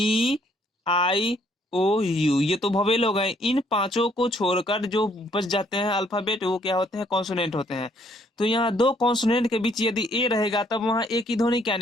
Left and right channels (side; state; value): both; normal; correlation 0.66